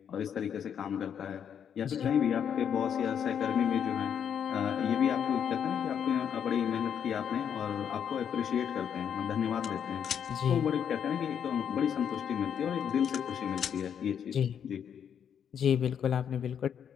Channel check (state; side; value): quieter; right; 8.3 dB